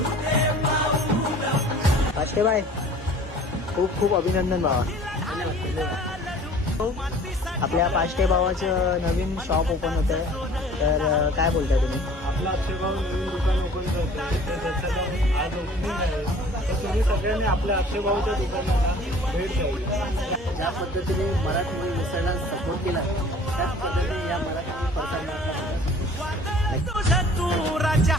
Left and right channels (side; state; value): both; normal; correlation 0.49